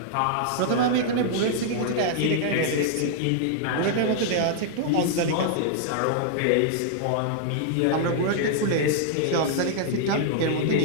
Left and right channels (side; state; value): both; different; correlation -0.01